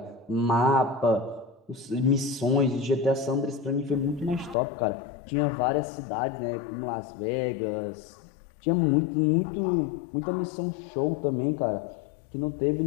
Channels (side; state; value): right; drops out; at 4.5 s